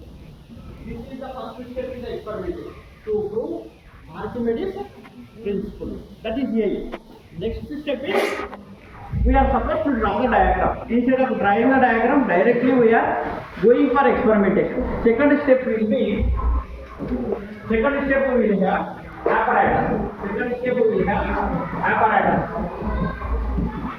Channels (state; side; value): identical; both; correlation 1.00